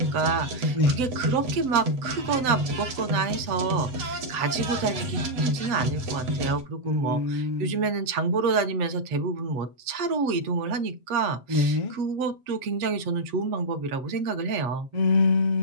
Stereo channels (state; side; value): late; left; 7.8 ms